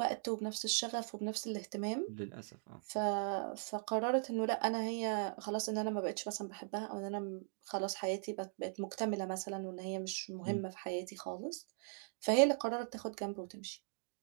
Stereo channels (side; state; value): left; silent; digital silence